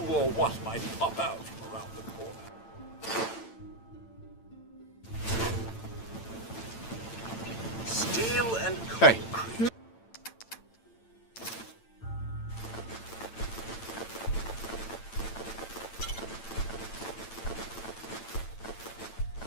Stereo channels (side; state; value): right; late; 8.9 ms